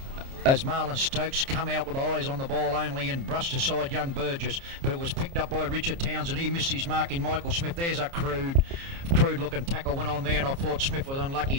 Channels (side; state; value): left; late; 29 ms